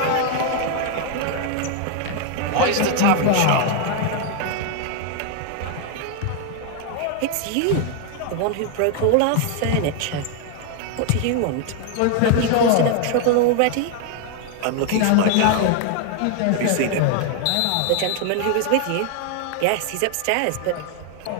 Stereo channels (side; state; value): both; different; correlation 0.00